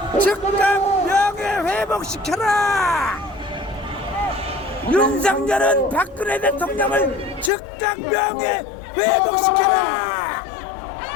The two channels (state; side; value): drops out; right; at 7.5 s